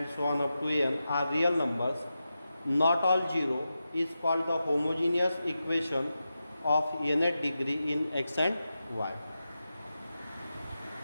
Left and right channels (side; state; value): both; inverted; correlation -0.91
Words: so on up to n are real numbers, not all 0, is called the homogeneous equation of nth degree in x and y.